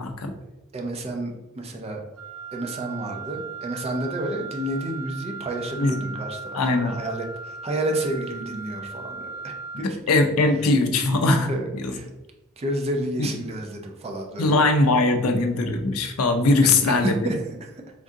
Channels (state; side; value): normal; both; correlation 0.44